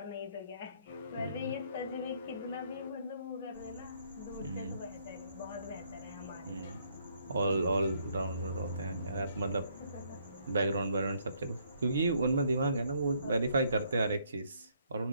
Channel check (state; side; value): inverted; both; correlation -0.69